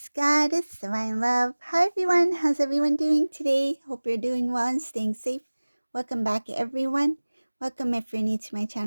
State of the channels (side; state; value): both; inverted; correlation -1.00